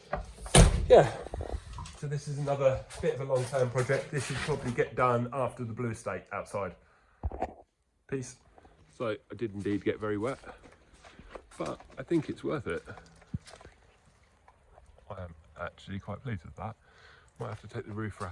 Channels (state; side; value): identical; both; correlation 1.00